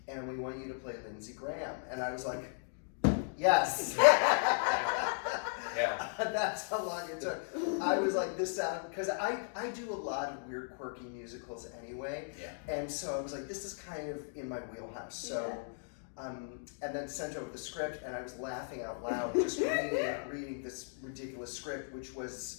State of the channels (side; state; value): right; silent; digital silence